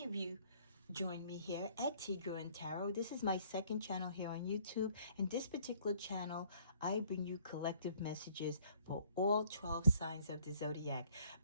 of you join me here at Tigro and Tarot. This is my second channel here on YouTube, and this particular channel I bring you collective messages for all 12 signs of the zodiac.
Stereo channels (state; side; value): inverted; both; correlation -0.60